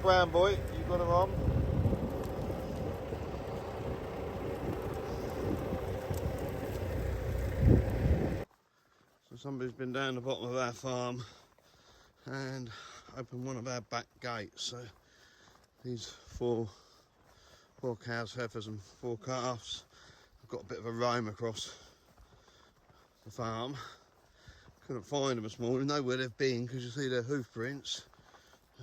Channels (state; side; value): identical; both; correlation 1.00